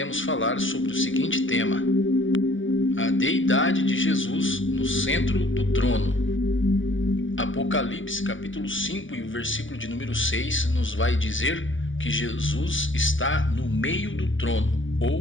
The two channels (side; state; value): right; late; 0.57 ms